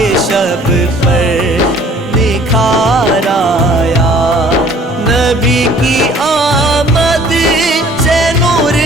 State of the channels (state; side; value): normal; both; correlation 0.54